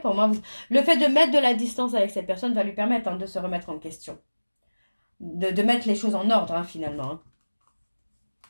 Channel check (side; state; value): both; inverted; correlation -1.00